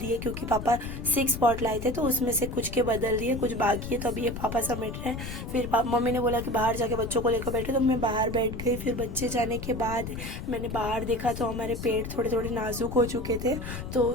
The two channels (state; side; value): noise; left; rumble, 7 dB below the sound